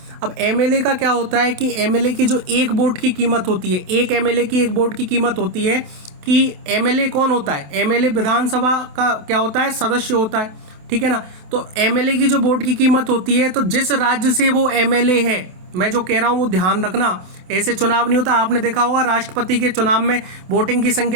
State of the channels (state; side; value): late; left; 28 ms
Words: अब एमएलए का क्या होता है कि एमएलए की जो एक वोट की कीमत होती है, एक एमएलए की एक वोट की कीमत होती है कि एमएलए कौन होता है? एमएलए विधानसभा का क्या होता है? सदस्य होता है, ठीक है ना। तो एमएलए की जो वोट की कीमत होती है, तो जिस राज्य से वो एमएलए है, मैं जो कह रहा हूँ वो ध्यान रखना, ऐसे चुनाव नहीं होता। आपने देखा होगा राष्ट्रपति के चुनाव में वोटिंग की